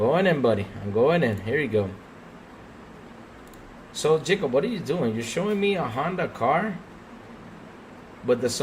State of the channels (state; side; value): identical; both; correlation 1.00